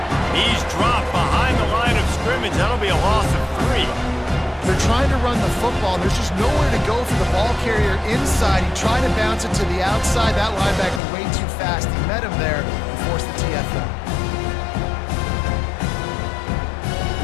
He's dropped behind the line of scrimmage. That'll be a loss of 3. They're trying to run the football, and there's just nowhere to go for the ball carrier inside. He tried to bounce it to the outside. That linebacker way too fast. He met him there and forced the TFL.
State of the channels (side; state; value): right; drops out; at 11.0 s